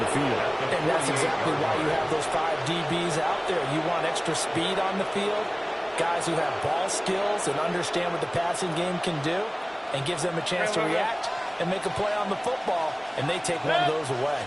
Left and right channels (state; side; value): identical; both; correlation 1.00